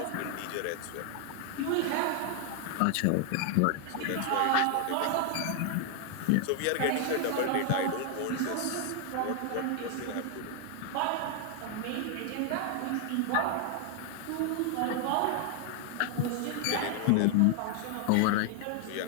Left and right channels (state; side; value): different; both; correlation 0.00